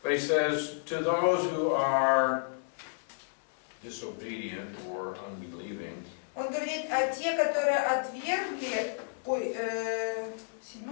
But he says, to those who are disobedient or unbelieving, Он говорит, а те, которые отвергли,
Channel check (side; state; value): right; silent; 57 dB below the other